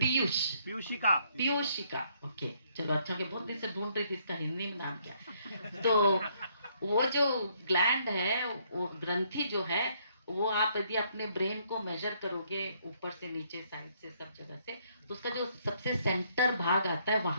पीयूषिका, ओके, चलो अच्छा, के बहुत दिन से ढूंढ रही थी इसका हिंदी में नाम क्या। तो वो जो ग्लैंड है, वो ग्रंथि जो है, वो आप यदि अपने ब्रेन को मेजर करोगे ऊपर से नीचे, साइड से, सब जगह से, तो उसका जो सबसे सेंटर भाग आता है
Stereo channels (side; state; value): both; inverted; correlation -0.69